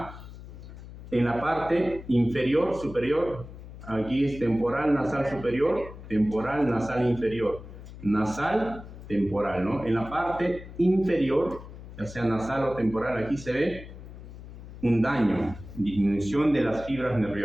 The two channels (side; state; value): left; noise; hum, 14 dB below the sound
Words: En la parte inferior, superior, aquí es temporal nasal superior, temporal nasal inferior, nasal temporal, ¿no? En la parte inferior, ya sea nasal o temporal, aquí se ve un daño, disminución de las fibras